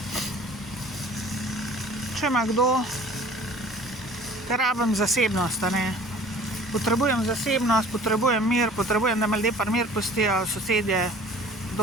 če ima kdo, ker rabim zasebnost, potrebujem zasebnost, potrebujem mir, potrebujem, da me ljudje pri mir pustijo, sosedje,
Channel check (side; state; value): both; normal; correlation 0.47